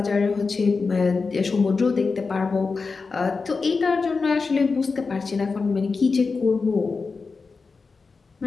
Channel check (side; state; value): right; quieter; 4.5 dB